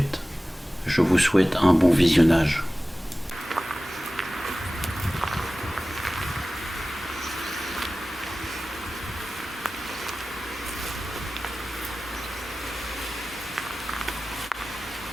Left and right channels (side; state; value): both; normal; correlation 0.96